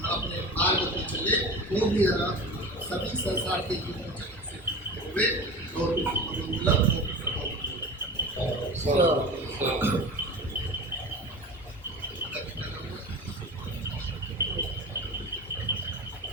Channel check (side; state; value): both; normal; correlation 0.33